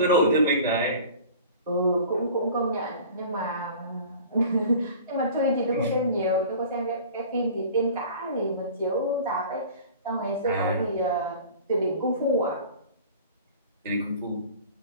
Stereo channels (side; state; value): both; inverted; correlation -0.42